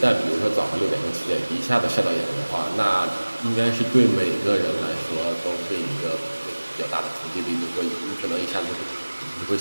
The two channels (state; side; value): inverted; both; correlation -1.00